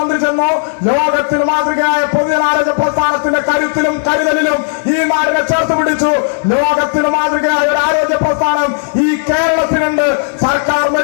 ചെന്നു. ലോകത്തിന് മാതൃകയായ പൊതുജനാരോഗ്യ പ്രസ്ഥാനത്തിന്റെ കരുത്തിലും കരുതലിലും ഈ നാടിനെ ചേർത്ത് പിടിച്ചു. ലോകത്തിന് മാതൃകയായ ഒരു ആരോഗ്യ പ്രസ്ഥാനം ഈ കേരളത്തിനുണ്ട്. സർക്കാർ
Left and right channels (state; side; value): silent; right; digital silence